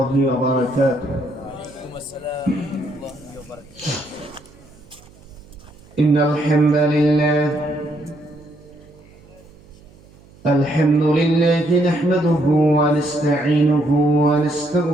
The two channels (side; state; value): right; noise; hum, 26 dB below the sound